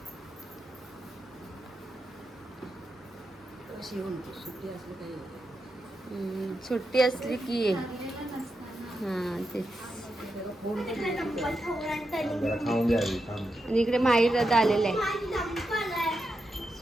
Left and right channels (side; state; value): both; normal; correlation 0.87